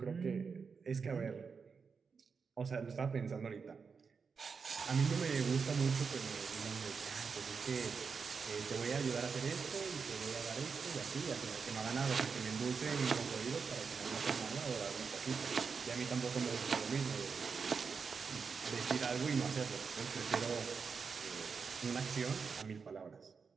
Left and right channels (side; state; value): left; quieter; 5.5 dB